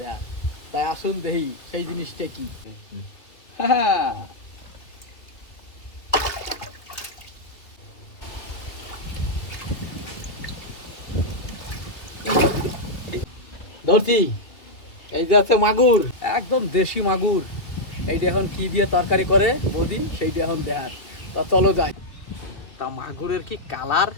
দেয়া, তাই আসুন দেখি সেই জিনিসটা কি। হ্যাঁ, ধরছি। এই যে আছে মাগুর, একদম দেশি মাগুর। এইটা এখন কি দিয়ে তরকারি করে বৌদি সেইটা এখন দেখার। তা চলো যাই। তা মাগুরের কি কালার,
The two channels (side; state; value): right; late; 2.9 ms